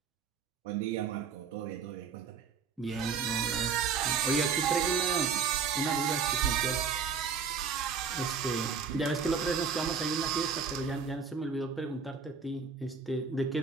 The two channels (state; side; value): quieter; left; 5.9 dB